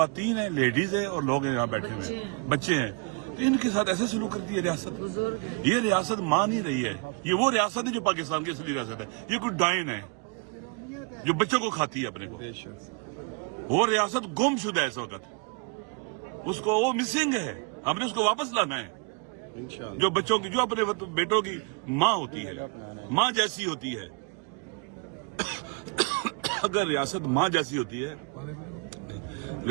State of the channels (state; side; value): quieter; left; 33.2 dB